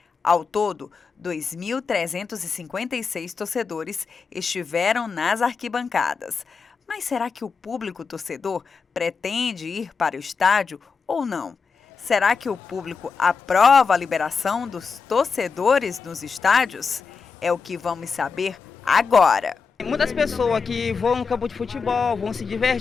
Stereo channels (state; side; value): quieter; right; 5.3 dB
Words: Ao todo, 2.356 torcedores estiveram nas arquibancadas. Mas será que o público torcedor pretende ir para o estádio ou não? Será que o público aprova a liberação dos torcedores nos estádios? É o que vamos saber agora. Muitas pessoas que vão no campo de futebol, vão se